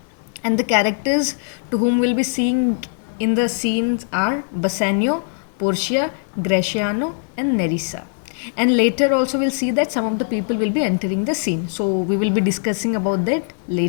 and the characters to whom we'll be seeing in the scenes are Bassanio, Portia, Graciano, and Nerissa. And later also we'll see that some of the people will be entering the scene. So we will be discussing about that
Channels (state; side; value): silent; right; 65 dB below the other